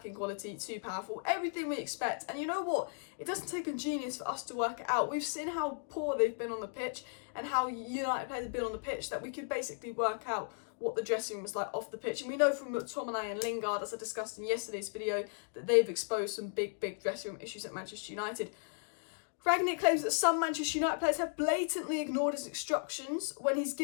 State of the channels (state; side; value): silent; right; digital silence